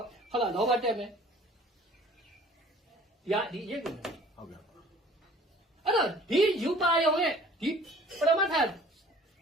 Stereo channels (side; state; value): both; normal; correlation 0.50